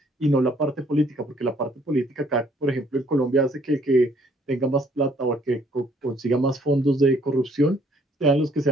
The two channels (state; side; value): normal; both; correlation 0.63